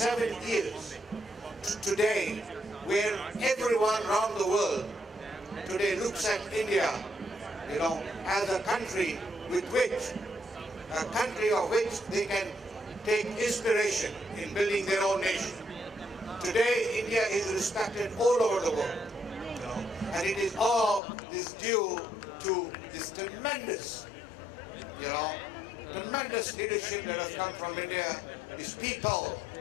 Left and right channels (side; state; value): right; drops out; at 21.0 s